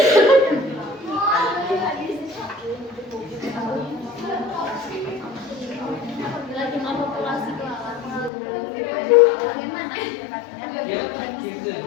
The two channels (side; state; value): right; drops out; at 8.3 s